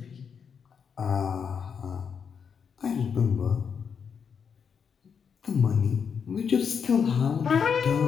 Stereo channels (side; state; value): right; quieter; 6.7 dB